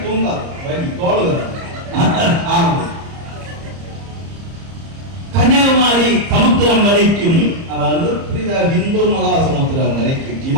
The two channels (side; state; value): left; late; 30 ms